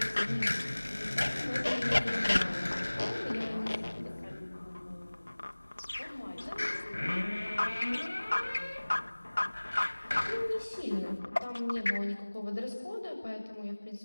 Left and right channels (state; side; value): inverted; both; correlation -1.00